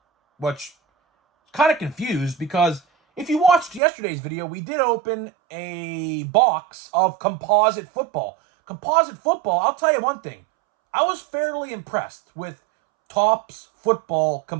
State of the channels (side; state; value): left; drops out; at 3.8 s